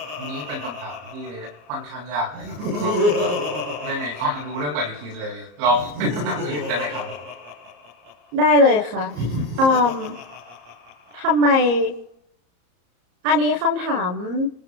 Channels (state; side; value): late; left; 34 ms